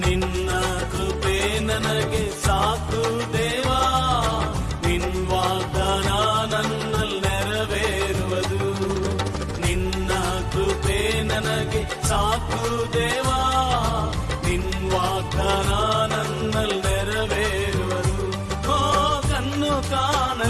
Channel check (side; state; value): both; identical; correlation 1.00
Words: ನಿನ್ನ ಕೃಪೆ ನನಗೆ ಸಾಕು ದೇವಾ, ನಿನ್ನ ವಾಗ್ದಾನ ನನ್ನಲ್ಲಿ ನೆರವೇರುವುದು. ನಿನ್ನ ಕೃಪೆ ನನಗೆ ಸಾಕು ದೇವಾ, ನಿನ್ನ ವಾಗ್ದಾನ ನನ್ನಲ್ಲಿ ನೆರವೇರುವುದು. ಓ ಕಣ್ಣು